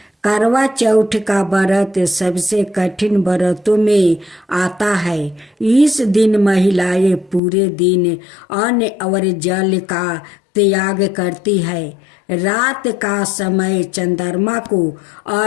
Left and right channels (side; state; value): right; drops out; at 7.4 s